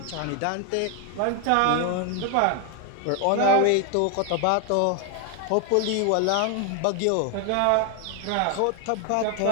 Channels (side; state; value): both; different; correlation 0.01